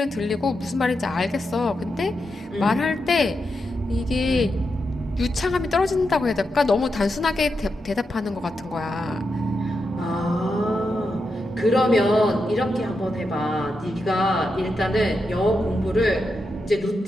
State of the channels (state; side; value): normal; both; correlation 0.86